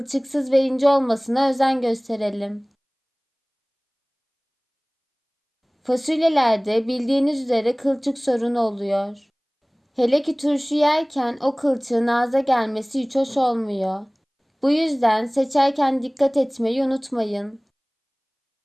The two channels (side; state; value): both; identical; correlation 1.00